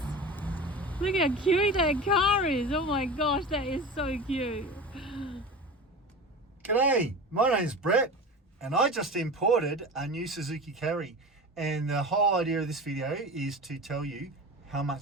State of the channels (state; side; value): normal; both; correlation 0.31